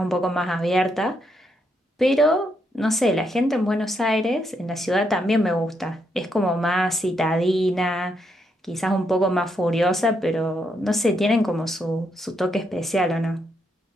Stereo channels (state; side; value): normal; both; correlation 0.78